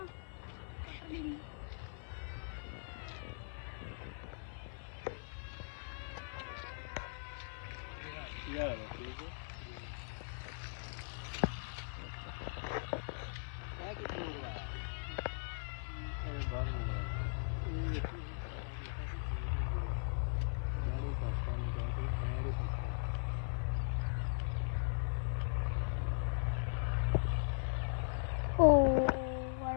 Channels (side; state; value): right; silent; 52 dB below the other